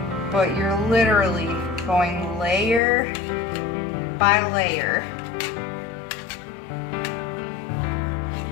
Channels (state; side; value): drops out; right; at 2.8 s